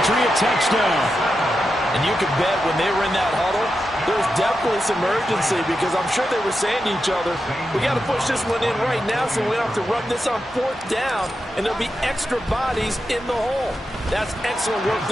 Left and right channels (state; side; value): normal; both; correlation 0.88